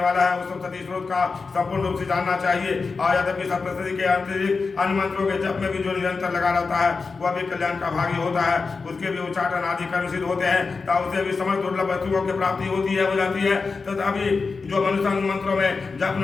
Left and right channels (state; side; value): quieter; right; 4.5 dB